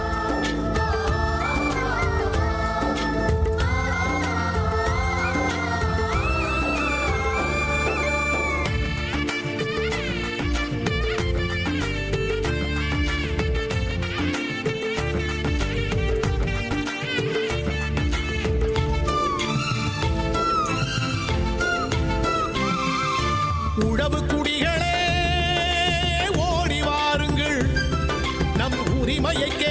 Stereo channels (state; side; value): identical; both; correlation 1.00